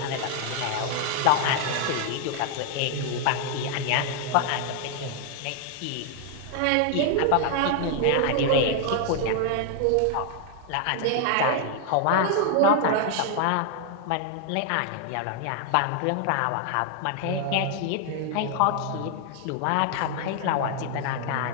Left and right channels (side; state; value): both; different; correlation 0.00